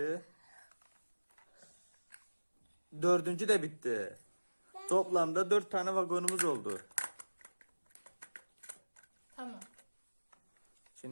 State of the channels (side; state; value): both; inverted; correlation -1.00